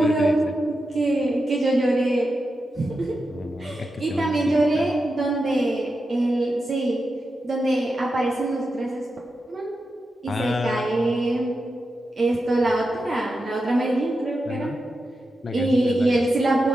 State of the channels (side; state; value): both; normal; correlation 0.89